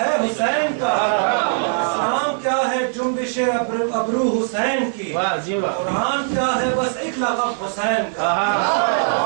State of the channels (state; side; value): silent; left; digital silence